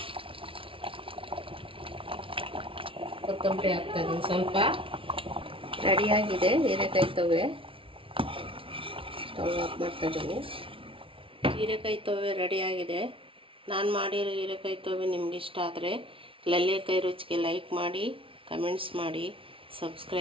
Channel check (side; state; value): left; late; 0.26 ms